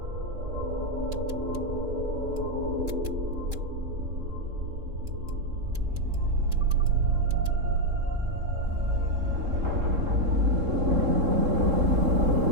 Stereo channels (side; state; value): left; late; 3.7 ms